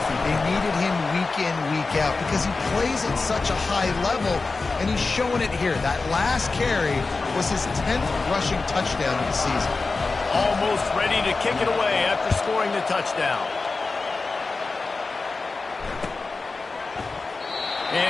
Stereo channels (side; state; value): right; quieter; 3.9 dB